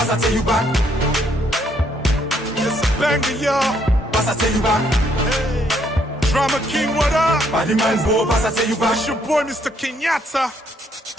I tell you back. It's a banger, y'all. Pass I tell you back. Hey. Drama King, what up? Body man go, pass I tell you back. It's your boy, Mr. Kenyatta.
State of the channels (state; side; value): normal; both; correlation 0.70